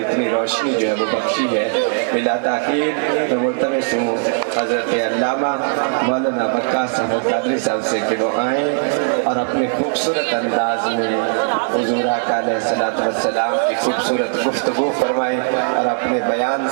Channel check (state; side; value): silent; left; digital silence